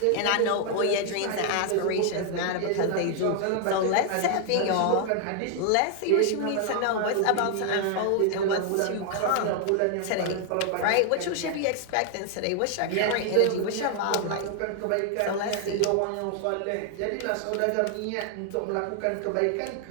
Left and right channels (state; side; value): different; both; correlation 0.00